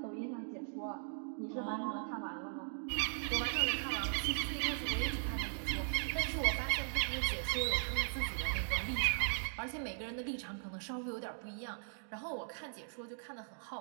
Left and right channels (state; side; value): silent; left; digital silence